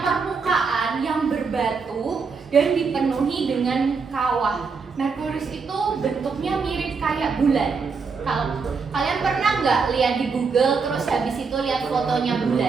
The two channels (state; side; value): quieter; left; 5.1 dB